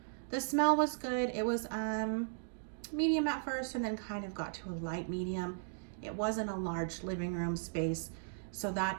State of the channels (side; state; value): left; silent; digital silence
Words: The smell was good. It was medium at first and then kind of got to a light medium. It wasn't a large living room space, so